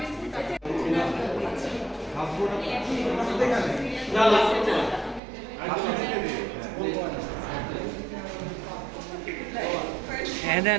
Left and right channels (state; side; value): drops out; left; at 5.2 s